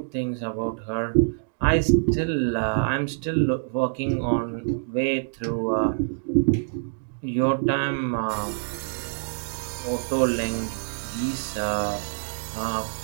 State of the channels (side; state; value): left; silent; digital silence